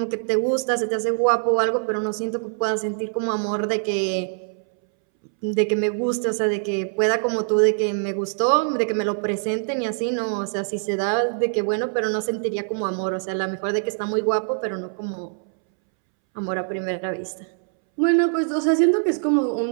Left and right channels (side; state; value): left; silent; 63 dB below the other